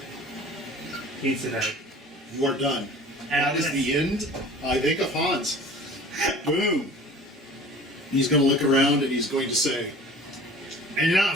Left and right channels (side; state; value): both; normal; correlation 0.44